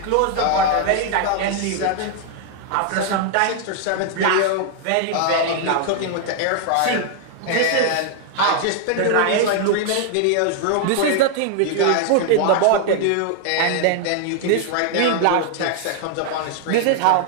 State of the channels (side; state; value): both; different; correlation 0.00